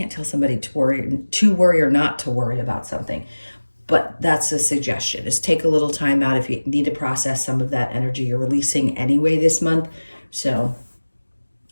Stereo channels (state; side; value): inverted; both; correlation -1.00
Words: tell somebody to worry or not to worry about something, but that's a suggestion, is take a little time out if you need to process some of that energy you're releasing anyway this month. So